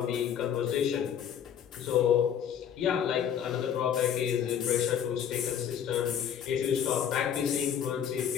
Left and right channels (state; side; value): quieter; right; 8.8 dB